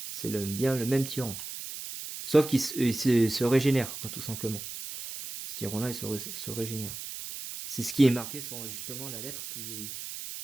c'est bien le même tyran. Sauf qu'il se régénère, quoi, tout simplement. Ce tyran-là, il se régénère. C'est ce qui est marqué sur justement la lettre que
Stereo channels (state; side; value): noise; right; hiss, 8 dB below the sound